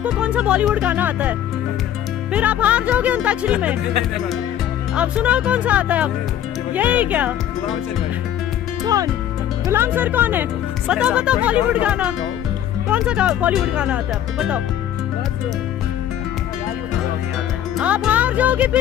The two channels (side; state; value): right; quieter; 11.0 dB